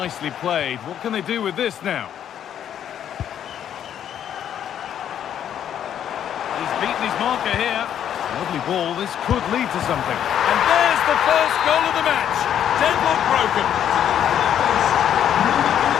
played. What can they do with this now? He's beaten his marker here. Lovely ball. This could lead to something. And there's the first goal of the match. Deadlock broken.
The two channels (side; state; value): right; quieter; 9.8 dB